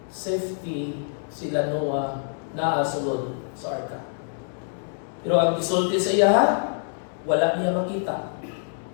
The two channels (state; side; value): silent; right; digital silence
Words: safety sila Noah na sulod sa arka. Pero ang gisulti sa iya, wala niya makita.